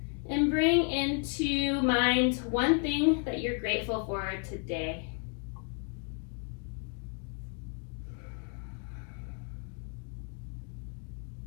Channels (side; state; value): right; quieter; 39.9 dB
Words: And bring into mind one thing that you're grateful for today.